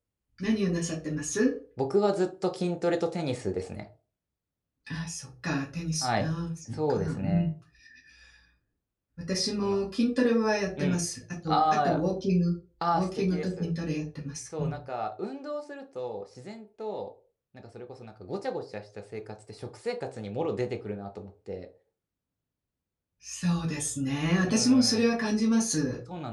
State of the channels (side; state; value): both; identical; correlation 1.00